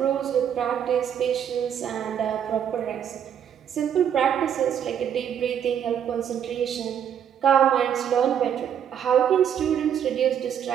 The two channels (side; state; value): left; quieter; 8.9 dB